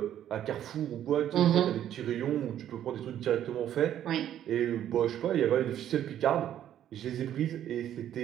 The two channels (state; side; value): quieter; left; 11.0 dB